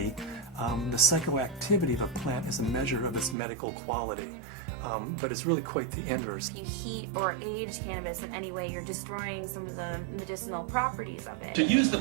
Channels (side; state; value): left; drops out; at 3.4 s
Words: the psychoactivity of a plant is a measure of its medical quality. But it's really quite the inverse. If you heat or age cannabis in any way, you're destroying some of the medicinal properties of it. To use the